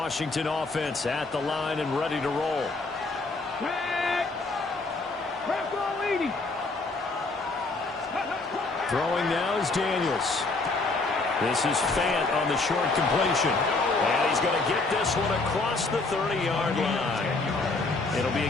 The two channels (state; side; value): quieter; right; 3.5 dB